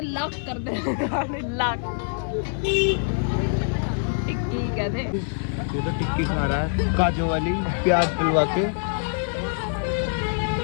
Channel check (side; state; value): right; silent; digital silence